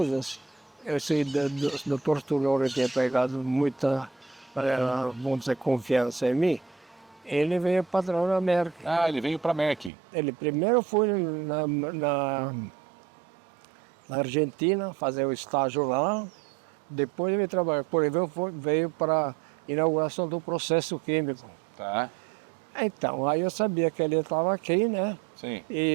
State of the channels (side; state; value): left; drops out; at 9.9 s